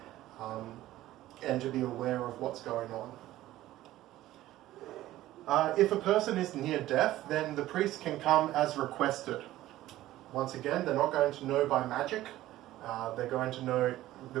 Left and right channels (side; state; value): left; quieter; 15.1 dB